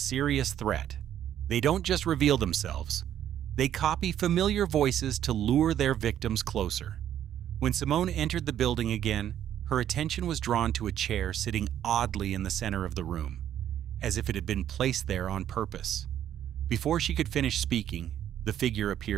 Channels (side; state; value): left; quieter; 10.7 dB